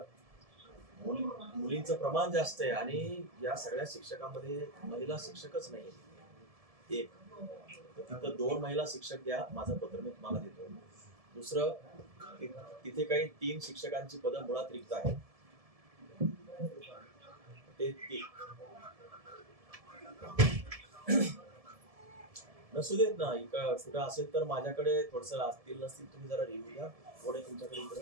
मुलींचं प्रमाण जास्त आहे आणि या सगळ्या शिक्षकांमध्ये महिला शिक्षकच नाही. एक तिथं 2 महिला शिक्षक द्या, माझं पत्र मी तुम्हाला देतो. दुसरं, तिथे काही 3 शिक्षकांची पदं मुळात रिक्त आहेत. ते नसू देत ना, कुठं असेल तर माझ्याकडे थोडस असतील नसतील तुम्ही जरा रिव्ह्यू द्या. कोण आहे तुमच्याकडे इकडं?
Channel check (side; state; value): left; late; 1.7 ms